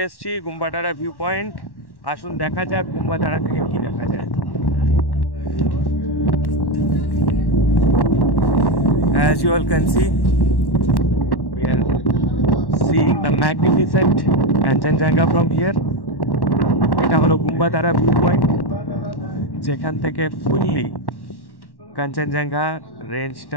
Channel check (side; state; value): right; late; 1.1 ms